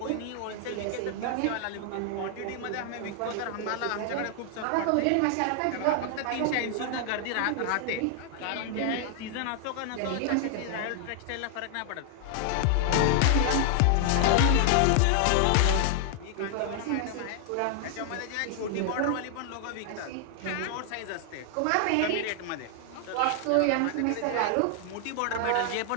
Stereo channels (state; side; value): different; both; correlation 0.00